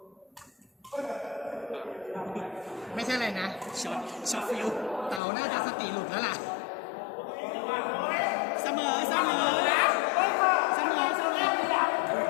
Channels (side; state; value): right; drops out; at 5.2 s